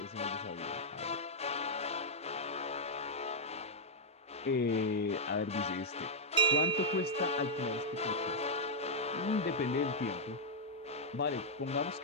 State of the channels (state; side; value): normal; both; correlation -0.05